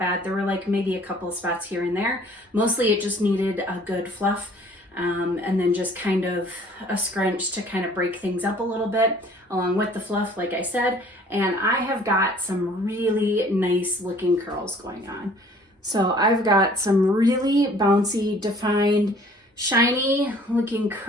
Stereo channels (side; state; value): both; normal; correlation 0.54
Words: There were like maybe a couple of spots here and there. Mostly it just needed a good fluff, and then just kind of a scrunch to kind of break things up a little bit along with the fluff, like I said. And I have got some really nice looking curls going on. So I've got some really bouncy, defined, shiny looking